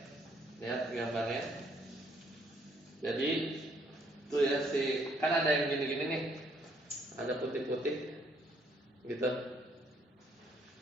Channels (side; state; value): both; normal; correlation 0.67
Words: Lihat gambarnya. Jadi tuh ya kan ada yang gini-gini nih. Ada putih-putih gitu.